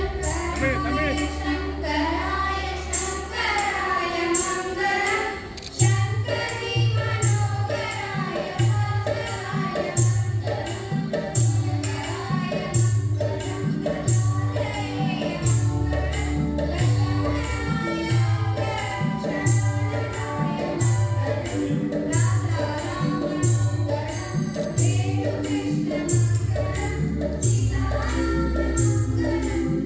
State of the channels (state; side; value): identical; both; correlation 1.00